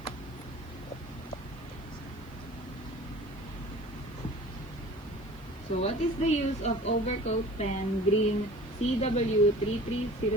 So what is the use of Overcoat Pen Green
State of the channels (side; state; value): left; noise; hiss, 27 dB below the sound